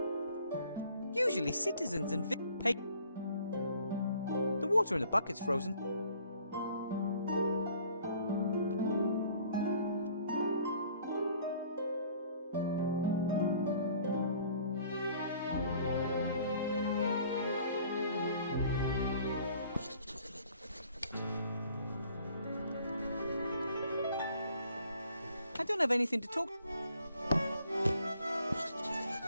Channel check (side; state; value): both; inverted; correlation -0.56